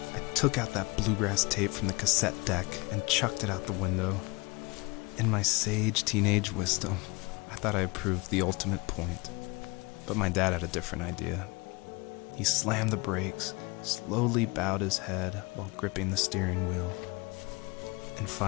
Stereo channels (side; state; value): right; quieter; 25.9 dB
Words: I took out that bluegrass tape from the cassette deck and chucked it out the window. In my sage teenage wisdom, I thought I proved the ultimate point. But my dad had a different idea. He slammed the brakes, slowly bowed his head while gripping the steering wheel, and